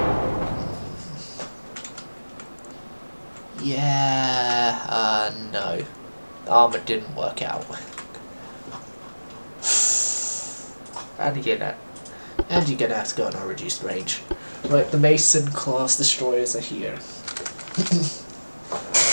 yeah, no. Armor didn't work out. And you're gonna have to go on a reduced range. Right, the Mason class destroyers are here.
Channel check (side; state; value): both; inverted; correlation -1.00